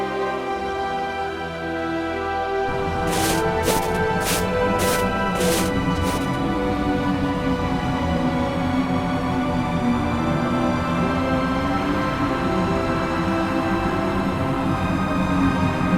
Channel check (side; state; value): both; identical; correlation 1.00